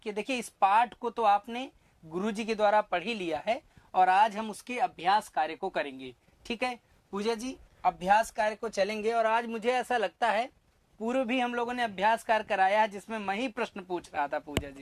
देखिए, इस पाठ को तो आपने गुरुजी के द्वारा पढ़ ही लिया है और आज हम उसके अभ्यास कार्य को करेंगे। ठीक है पूजा जी, अभ्यास कार्य को चलेंगे। और आज मुझे ऐसा लगता है पूर्व भी हम लोगों ने अभ्यास कार्य कराया है जिसमें मैं ही प्रश्न पूछ रहा था पूजा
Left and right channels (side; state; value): both; identical; correlation 1.00